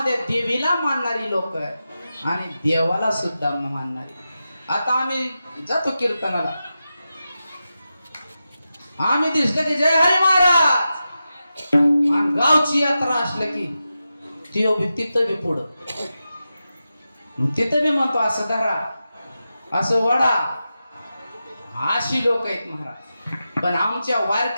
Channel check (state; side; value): inverted; both; correlation -0.91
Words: देवीला मानणारी लोक आहेत आणि देवाला सुद्धा मानणारी. आता आम्ही जातो कीर्तनाला आम्ही दिसलं की जय हरी महाराज आणि गावची यात्रा असलं की तिथं बी पुढं तिथं बी म्हणतो असं धरा असं वडा अशी लोक आहेत महाराज. पण आमच्या